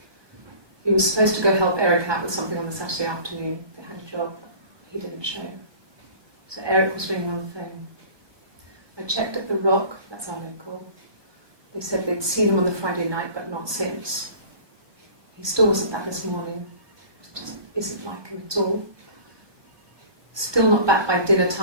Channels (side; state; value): left; late; 1.2 ms